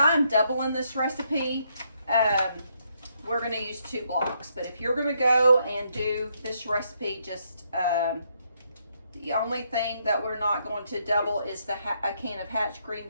doubling this recipe, we're going to use 2 blocks. But if you're going to go and do this recipe, just the only thing that we're not going to double is a can of Hatch green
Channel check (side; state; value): both; inverted; correlation -0.75